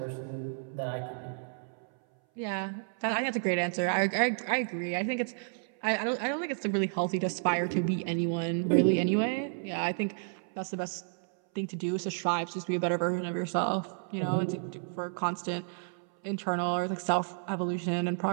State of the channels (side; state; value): left; silent; 57 dB below the other